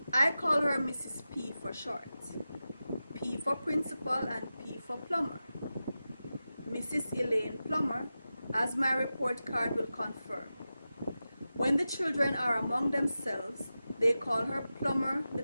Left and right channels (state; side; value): inverted; both; correlation -0.93